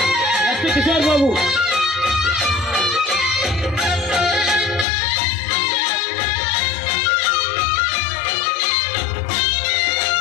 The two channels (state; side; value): drops out; right; at 4.9 s